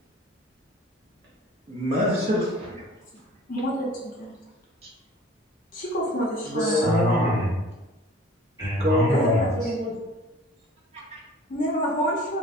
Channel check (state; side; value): normal; both; correlation 0.47